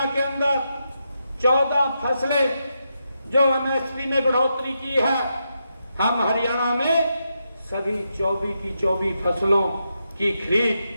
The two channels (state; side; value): inverted; both; correlation -0.84